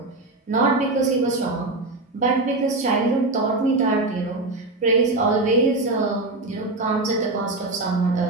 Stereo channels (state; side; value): quieter; left; 3.0 dB